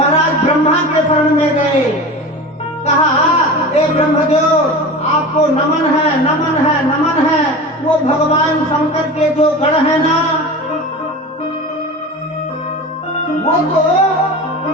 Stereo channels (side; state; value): both; normal; correlation 0.31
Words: ब्रह्मा के शरण में गए। कहा ए ब्रह्मदेव आपको नमन है, नमन है, नमन है। वो भगवान शंकर के जो गण है ना वो तो